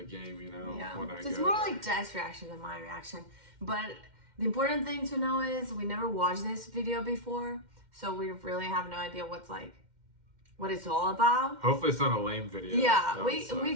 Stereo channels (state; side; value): late; left; 2.1 ms